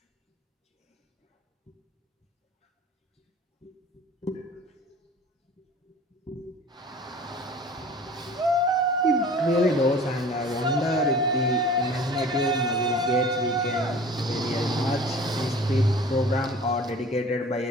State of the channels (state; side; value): normal; both; correlation 0.43